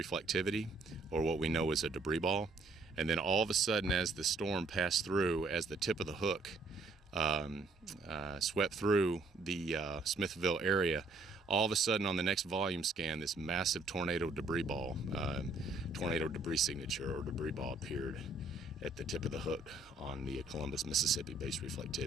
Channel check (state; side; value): quieter; left; 3.4 dB